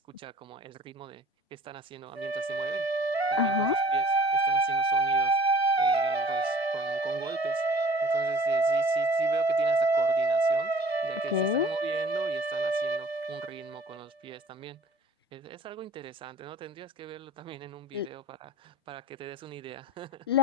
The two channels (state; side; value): normal; both; correlation 0.49